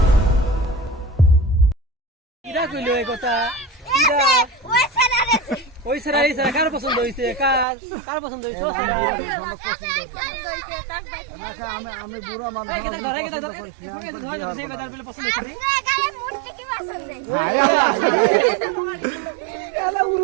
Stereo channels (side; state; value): left; drops out; at 7.7 s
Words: ওই স্যার এই স্যার কার পছন্দ হইছে কার পছন্দ হইছে আমি বুড়া মানুষ